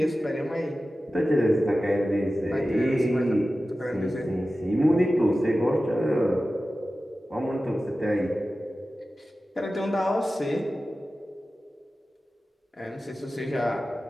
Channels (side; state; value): both; normal; correlation 0.95